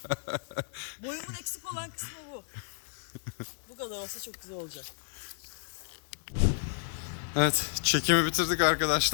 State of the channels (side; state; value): right; silent; digital silence